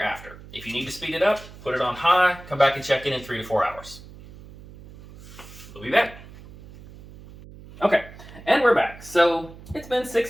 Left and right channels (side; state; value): right; noise; hum, 18 dB below the sound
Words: after. If you need to speed it up, put it on high, come back and check in 3 to 4 hours. We'll be back. Okay, and we're back. So it's been